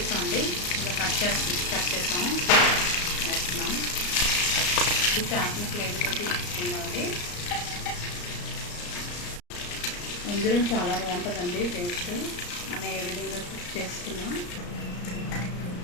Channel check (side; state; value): right; late; 34 ms